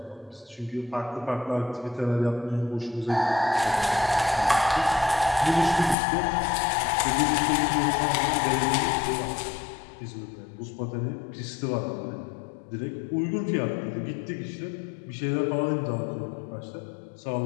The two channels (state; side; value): drops out; right; at 6.0 s